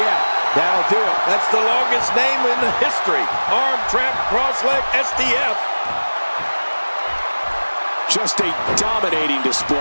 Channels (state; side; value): inverted; both; correlation -1.00